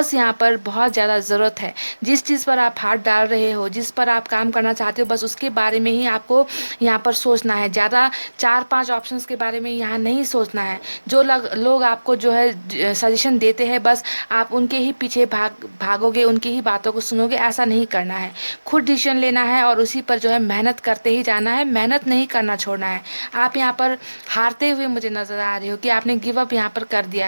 यहाँ पर बहुत ज़्यादा ज़रूरत है। जिस चीज़ पर आप हाथ डाल रहे हो, जिस पर आप काम करना चाहते हो, बस उसके बारे में ही आपको यहाँ पर सोचना है। ज़्यादा 4-5 ऑप्शंस के बारे में यहाँ नहीं सोचना है। जो लोग आपको जो है सजेशन देते हैं, बस आप उनके ही पीछे भागोगे, उनकी ही बातों को सुनोगे, ऐसा नहीं करना है। खुद डिसीजन लेना है और उसी पर जो है मेहनत करते ही जाना है, मेहनत नहीं करना छोड़ना है। आप यहाँ पर हारते हुए मुझे नज़र आ रहे हो, कि आपने गिव अप यहाँ पर कर दिया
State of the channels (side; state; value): both; inverted; correlation -1.00